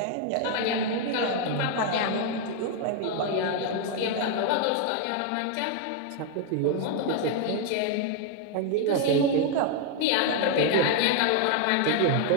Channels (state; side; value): different; both; correlation 0.01